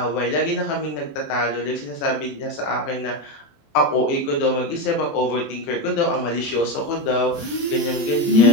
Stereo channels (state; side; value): late; right; 17 ms